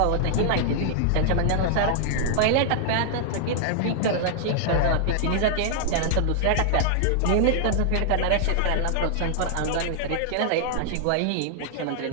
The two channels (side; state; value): both; different; correlation -0.01